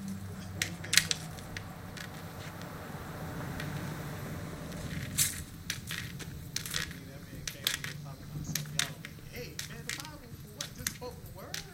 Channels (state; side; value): identical; both; correlation 1.00